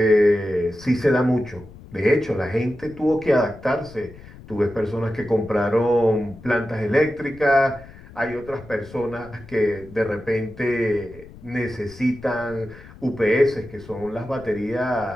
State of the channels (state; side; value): noise; left; rumble, 19 dB below the sound